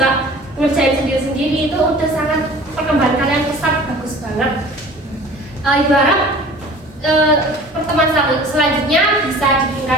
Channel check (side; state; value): both; normal; correlation 0.45